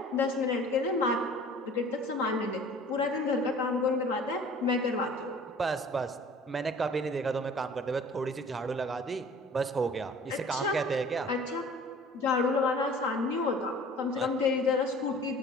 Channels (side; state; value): both; normal; correlation 0.47